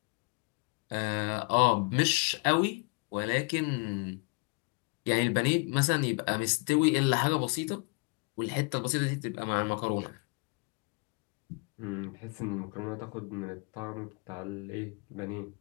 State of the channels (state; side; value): quieter; right; 32.6 dB